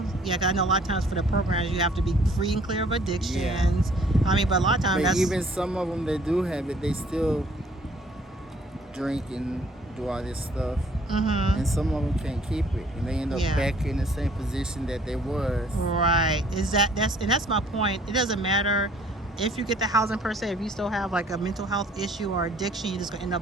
Yeah, 'cause I know a lot of times for the programs you have to be free and clear of addictions. Yeah. But a lot of times even some of them that do have it, they still drink and do all this stuff. And some of them can't keep it, and they end up back in the same position that they was. Right. That's my point. It doesn't matter if you get the housing per se. If you still have like a mental health issue or addiction, you're just gonna end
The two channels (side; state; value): both; normal; correlation 0.58